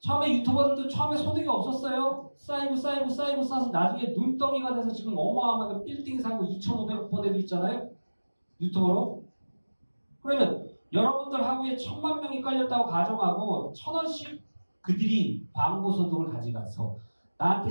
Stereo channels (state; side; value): inverted; both; correlation -1.00